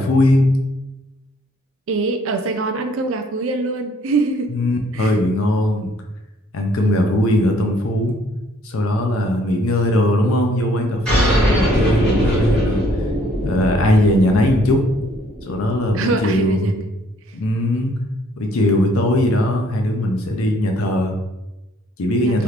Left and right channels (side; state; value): both; normal; correlation 0.64